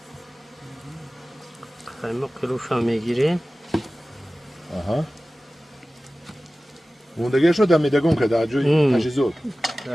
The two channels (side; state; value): both; normal; correlation 0.96